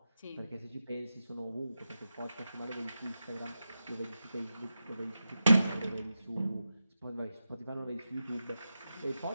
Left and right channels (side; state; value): both; inverted; correlation -0.91